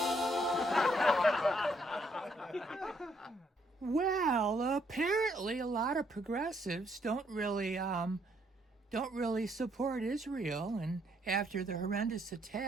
Well, apparently a lot of progressives don't really support Israel, and after the horrendous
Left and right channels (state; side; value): normal; both; correlation 0.70